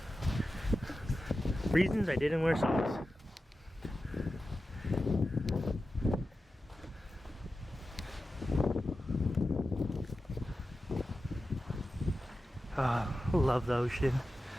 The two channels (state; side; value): normal; both; correlation 0.93